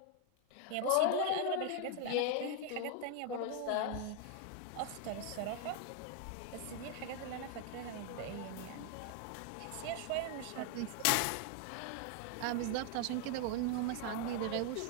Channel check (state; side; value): different; both; correlation 0.00